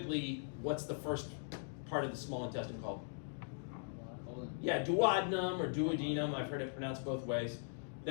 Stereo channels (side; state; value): right; silent; digital silence